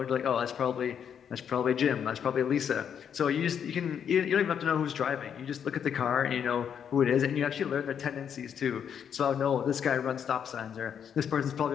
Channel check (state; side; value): quieter; right; 8.1 dB